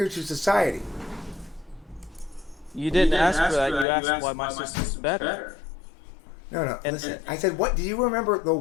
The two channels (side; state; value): right; drops out; at 3.9 s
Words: to society. You didn't ask for that. You asked why my system's better. No. Listen, I said, what? Do you remember the